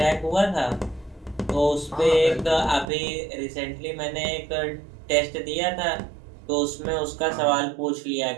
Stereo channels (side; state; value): left; drops out; at 2.9 s